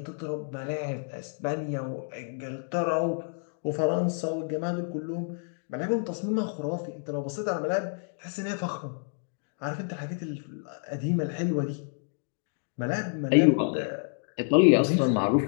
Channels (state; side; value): silent; right; 59 dB below the other